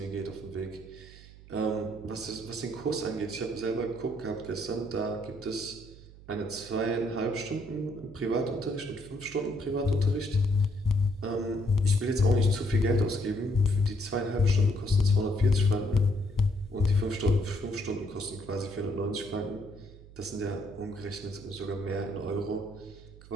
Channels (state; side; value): noise; right; hum, 19 dB below the sound